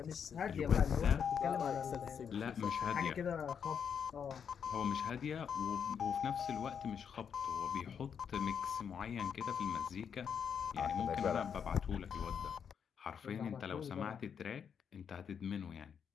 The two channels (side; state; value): right; quieter; 7.3 dB